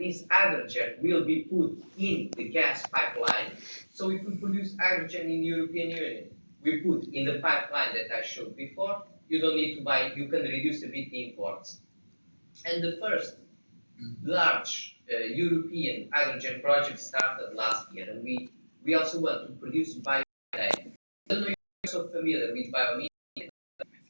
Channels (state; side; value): inverted; both; correlation -1.00